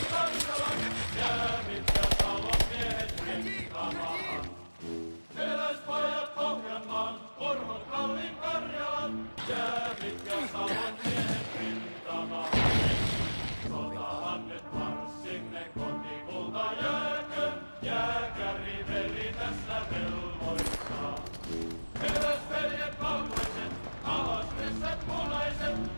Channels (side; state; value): both; inverted; correlation -1.00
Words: Karjalan, jäävit ja Salon miehet rintamaan. Eräspajat Pohjanmaan, Orvot Kalli Karjalan, jäävit ja Salon miehet rintamaan. Sotahan nyt marssimme kotikulta jääkö, jääkäri veli tässä velvoittaa. Eräsveljet valkoiset, alas ryssät punaiset,